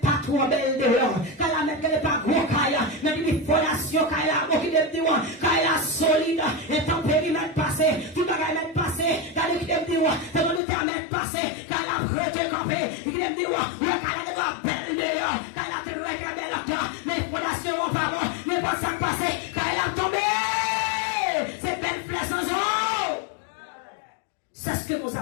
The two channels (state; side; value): drops out; right; at 10.6 s